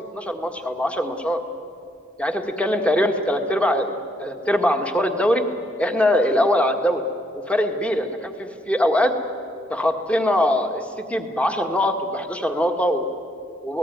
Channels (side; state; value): both; normal; correlation 0.71